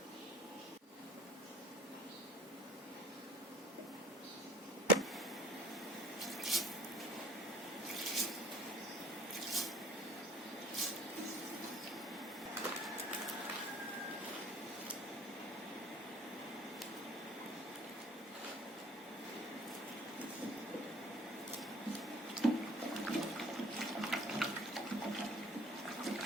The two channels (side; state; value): both; normal; correlation 0.50